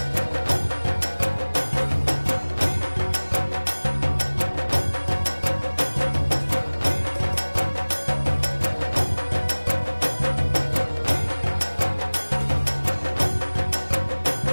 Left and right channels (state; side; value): inverted; both; correlation -1.00